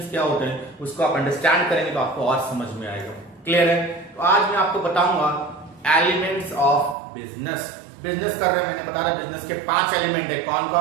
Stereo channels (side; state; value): left; drops out; at 7.0 s